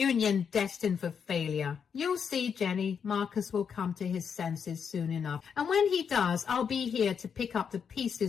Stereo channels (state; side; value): quieter; right; 6.9 dB